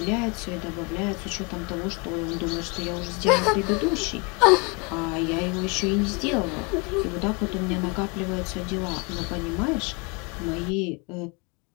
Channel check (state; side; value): quieter; right; 30.9 dB